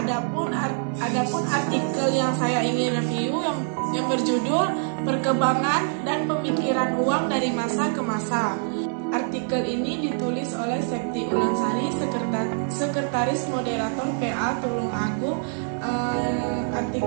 artikel yang saya ingin review yang berjudul Perkembangan dan Pemikiran Uang dari Masa ke Masa. Artikel ini ditulis oleh Septi Ulansari, Sekretaris Moderator PA Tulung Agung.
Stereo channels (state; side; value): silent; left; 59 dB below the other